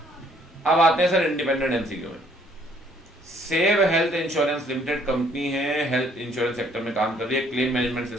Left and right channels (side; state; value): both; normal; correlation 0.63